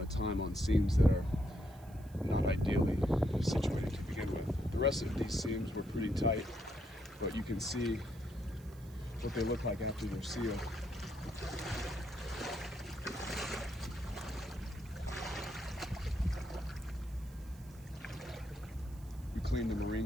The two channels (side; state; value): right; noise; hiss, 25 dB below the sound